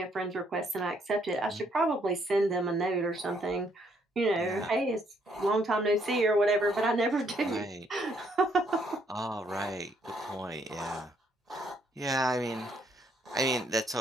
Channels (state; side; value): normal; both; correlation 0.70